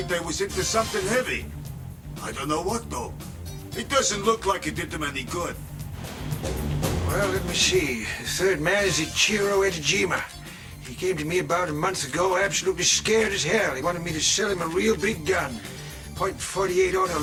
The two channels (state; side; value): identical; both; correlation 1.00